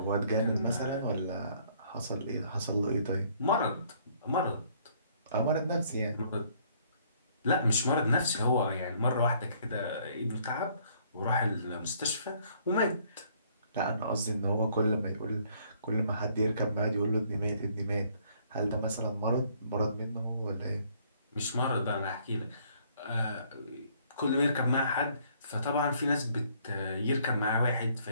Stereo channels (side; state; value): both; inverted; correlation -0.63